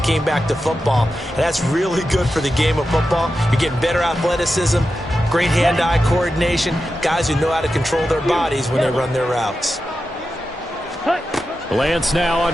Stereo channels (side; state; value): both; normal; correlation 0.90